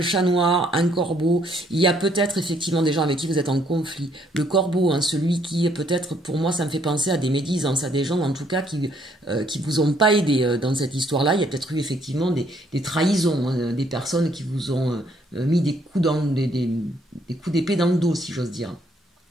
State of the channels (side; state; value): both; normal; correlation 0.67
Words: noir, un corbeau. Il y a peut-être effectivement des gens avec qui vous êtes en conflit. Le corbeau, hein, celui qui peut-être, pour moi, ça me fait penser à des médisances, à des gens en tout cas qui vous ont pas aidé dans cette histoire-là. Il y a peut-être eu effectivement des trahisons, hein, des personnes qui vous ont mis des coups d'épée dans le dos, si j'ose dire.